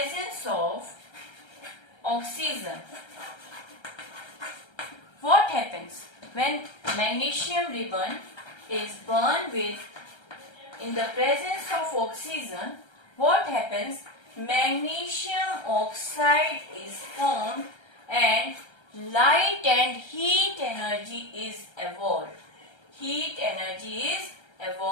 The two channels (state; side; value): late; right; 1.3 ms